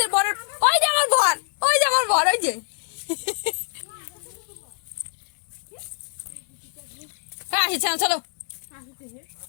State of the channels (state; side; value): silent; right; digital silence